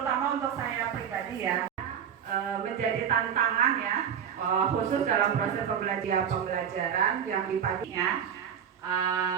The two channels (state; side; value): quieter; left; 8.3 dB